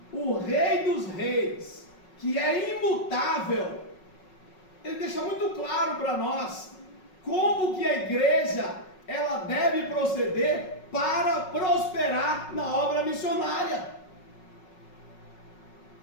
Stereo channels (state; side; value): late; right; 5.4 ms